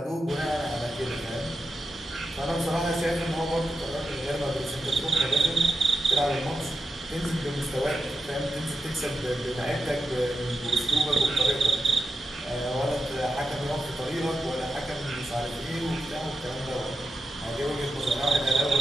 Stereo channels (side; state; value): both; normal; correlation 0.89